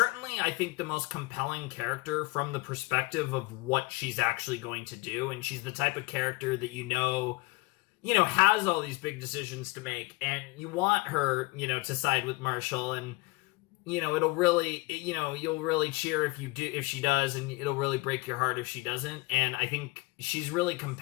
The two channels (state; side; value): quieter; right; 24.6 dB